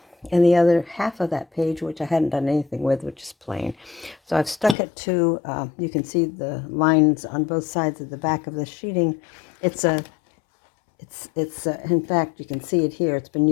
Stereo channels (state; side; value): drops out; right; at 4.8 s